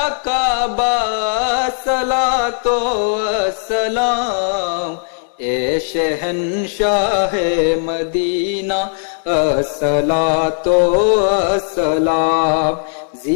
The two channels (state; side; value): silent; right; 63 dB below the other